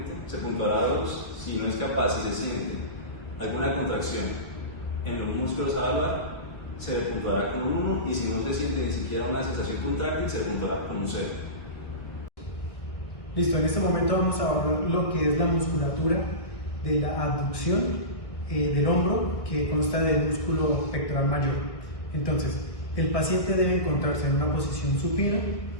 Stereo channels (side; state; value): right; late; 1.5 ms